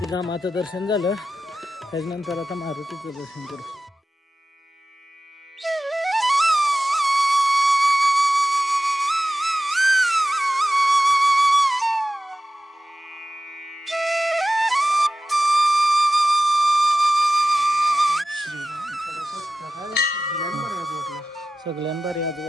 रामाचं दर्शन झालं, त्याच्यानंतर आता मारुतीचं दर्शन करू। सगळ्यांभारी आज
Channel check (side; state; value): both; normal; correlation 0.94